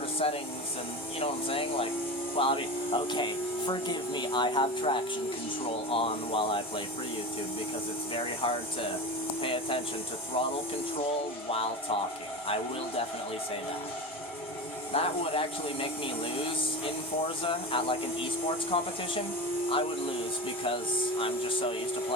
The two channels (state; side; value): normal; both; correlation 0.27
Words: settings, and you know what I'm saying? Like, well, I mean, okay, forgive me, I have traction control on while I play for YouTube, because it's very hard to pay attention to throttle control while talking. I will definitely say that. That would actually make me lose in Forza at like an esports competition. I would lose because I'm just so used to